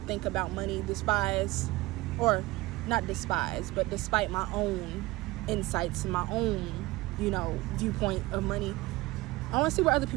about money, despite my own insights and my own, you know, viewpoint of money. I want to see where other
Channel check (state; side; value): quieter; left; 20.2 dB